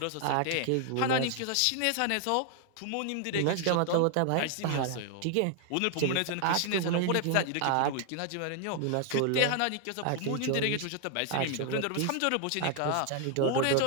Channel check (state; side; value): different; both; correlation 0.00